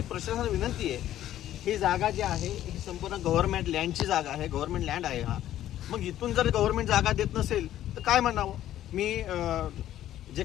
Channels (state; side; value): quieter; right; 12.5 dB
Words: प्रशासनाला विनंती आहे, ही जागा जी आहे ही संपूर्ण गव्हर्नमेंट लँडची जागा आहे, गव्हर्नमेंट लँड आहे हा। मग इथून जर गव्हर्नमेंट जागा देत नसेल तर काय म्हणावं। मी जे